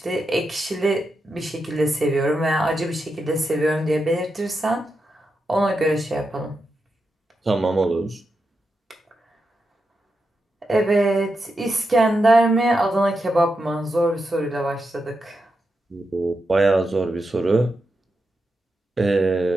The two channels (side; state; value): both; normal; correlation 0.87